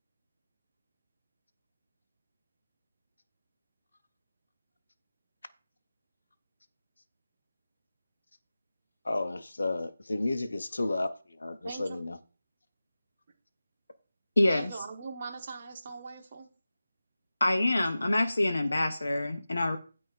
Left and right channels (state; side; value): inverted; both; correlation -0.96